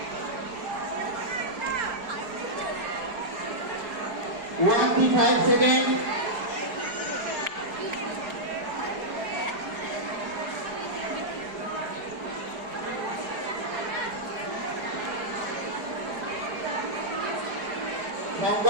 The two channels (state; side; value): late; left; 4.8 ms